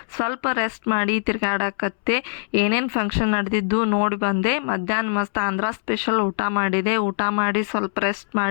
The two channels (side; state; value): right; silent; 64 dB below the other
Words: ಸ್ವಲ್ಪ ರೆಸ್ಟ್ ಮಾಡಿ ತಿರ್ಗಾಡಕತ್ತೆ. ಏನೇನು ಫಂಕ್ಷನ್ ನಡೆದಿದ್ದು ನೋಡಿ ಬಂದೆ. ಮಧ್ಯಾಹ್ನ ಮಸ್ತ್ ಆಂಧ್ರ ಸ್ಪೆಷಲ್ ಊಟ ಮಾಡಿದೆ. ಊಟ ಮಾಡಿ ಸ್ವಲ್ಪ ರೆಸ್ಟ್